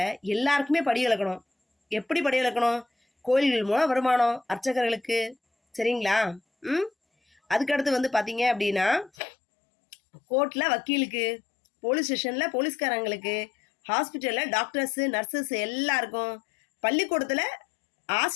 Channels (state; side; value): drops out; right; at 9.1 s